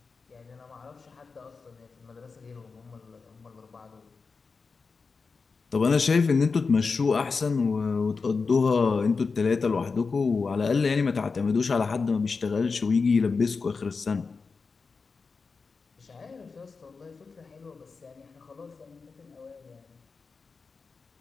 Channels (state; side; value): quieter; right; 4.7 dB